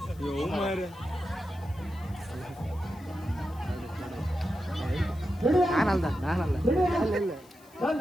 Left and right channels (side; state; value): left; noise; hiss, 26 dB below the sound